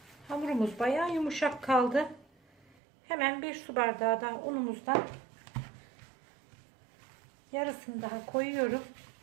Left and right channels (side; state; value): left; drops out; at 2.8 s